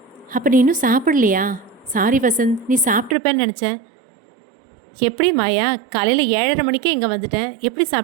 அப்போ நீ இன்னும் சாப்பிடலையா? சாரி வசந்த், நீ சாப்பிட்ருப்பேன்னு நினச்சேன். எப்படி மாயா, காலையில் 7:30 மணிக்கே இங்கே வந்துட்டேன், எப்படி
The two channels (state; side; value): drops out; left; at 3.2 s